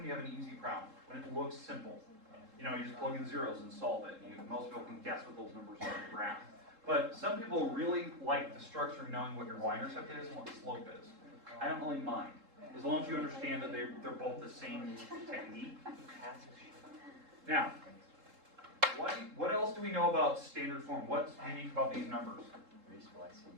you have an easy problem, when it looks simple. You know, you just plug in zeros and solve it. Most people can guess what those numbers are on the graph. But some people really like the structure of knowing what your y-intercept is and what the slope is. I don't really mind, as long as you understand that they're both the same technique. Now, what else do we know about standard form? What's unique about these numbers?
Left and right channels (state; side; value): late; left; 3.7 ms